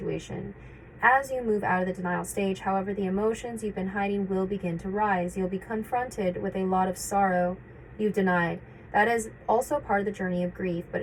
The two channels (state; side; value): identical; both; correlation 1.00